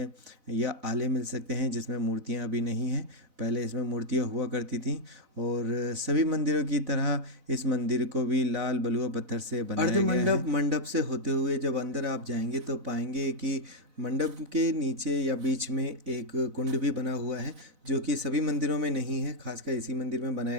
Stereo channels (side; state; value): left; late; 4.0 ms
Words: या आले मिल सकते हैं जिसमें मूर्तियाँ अभी नहीं हैं। पहले इसमें मूर्तियाँ हुआ करती थीं, और सभी मंदिरों की तरह इस मंदिर को भी लाल बलुआ पत्थर से बनाया गया है। मंडप से होते हुए जब अंदर आप जाएंगे तो पाएंगे कि मंडप के नीचे या बीच में एक कुंड भी बना हुआ है, जो कि सभी मंदिरों में नहीं है, खासकर इसी मंदिर में